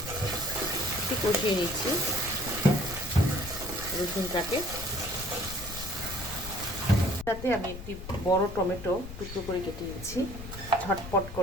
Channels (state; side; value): noise; left; rumble, 11 dB below the sound